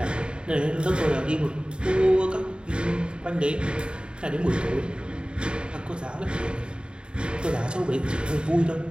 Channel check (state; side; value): late; left; 0.052 ms